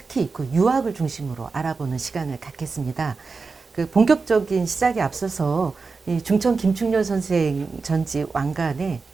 그 유학을 중심으로 알아보는 시간을 갖겠습니다. 그 본격적인 시작에 앞서서 이 중천 김충렬 선생 전지 왕간에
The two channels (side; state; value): left; quieter; 4.5 dB